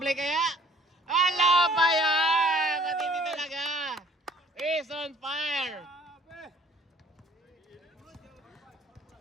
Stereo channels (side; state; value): both; normal; correlation 0.56